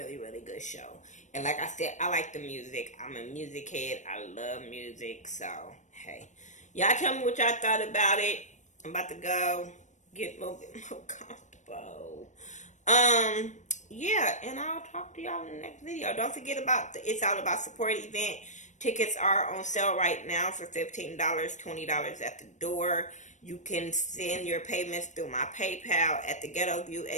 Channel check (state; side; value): late; right; 0.35 ms